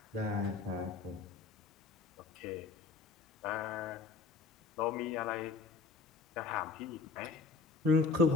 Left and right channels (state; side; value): quieter; right; 4.4 dB